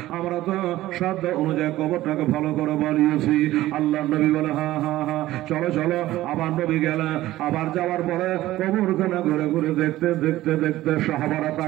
আমরা তো সাধ্য অনুযায়ী কবরটাকে ভালো করে বানিয়েছি। আল্লাহ নবী বলে হা হা হা চলো চলো। আবার নবী গেলে, আবার যাওয়ার পরে কবরখানা ঘুরে ঘুরে দেখতে দেখতে দেখতে সাহাবারা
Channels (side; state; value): left; quieter; 15.7 dB